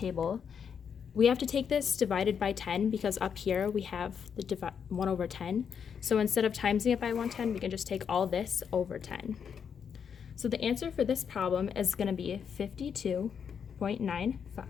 we have to take this divided by 10 because up here we have the 1 over 10. So instead of timesing it by 110, we can just take all this over 10. So the answer for this problem is going to be 52.95.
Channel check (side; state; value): right; quieter; 7.2 dB